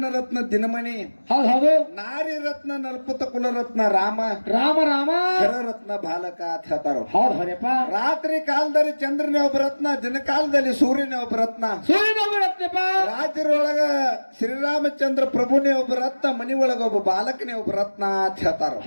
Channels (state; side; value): inverted; both; correlation -1.00